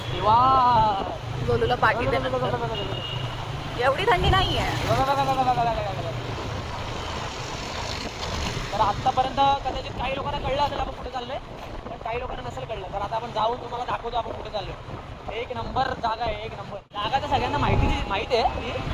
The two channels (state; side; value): identical; both; correlation 1.00